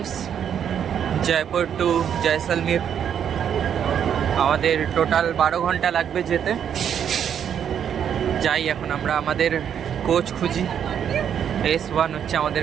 জয়পুর টু জয়সলমীর। আমাদের টোটাল 12 ঘন্টা লাগবে যেতে। যাই এখন আমরা আমাদের কোচ খুঁজি। S1 হচ্ছে আমাদের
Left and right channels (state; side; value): quieter; left; 8.7 dB